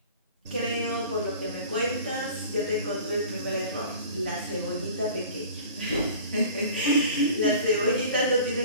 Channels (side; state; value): both; inverted; correlation -0.43